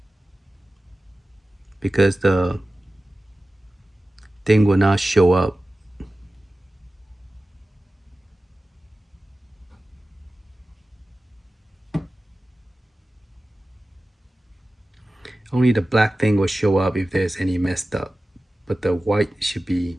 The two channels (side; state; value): both; normal; correlation 0.95